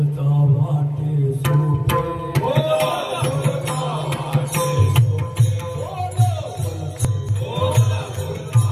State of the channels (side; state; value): both; identical; correlation 1.00